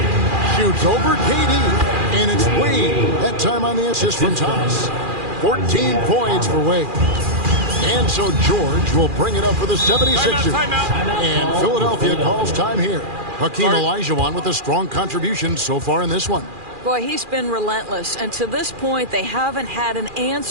Shoots over KD. And it's Wade. That time on the assist from Thomas. 14 points for Wade. And so George will bring it up for the 76ers. And Philadelphia calls time here. Hakeem Olajuwon with a strong contribution so far in this one. Boy, he's been relentless, and to this point, they haven't had an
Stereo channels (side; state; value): left; late; 2.4 ms